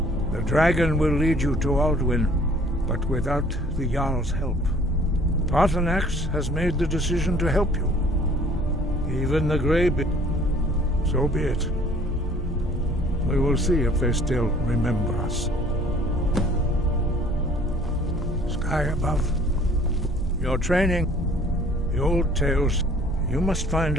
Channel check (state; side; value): normal; both; correlation 0.54